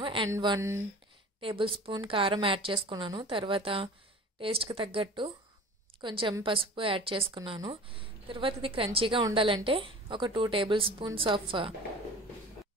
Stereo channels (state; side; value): normal; both; correlation 0.40